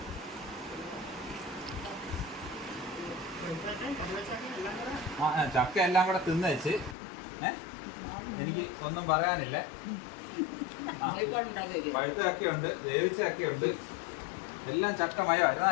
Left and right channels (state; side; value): drops out; right; at 7.0 s